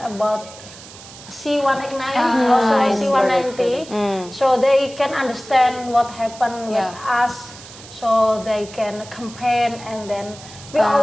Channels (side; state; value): right; noise; hiss, 17 dB below the sound